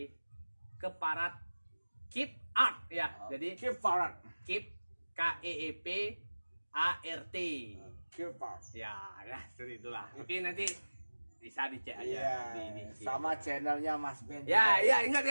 Keparat Keep Art ya. Jadi Keep Farad. Keep KEEP ART. Keep Farad. Ya, seperti itulah. Oke, nanti bisa dicek aja Iya. di Sama channelnya Mas Ben. Ya, juga. ya ingat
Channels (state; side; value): inverted; both; correlation -1.00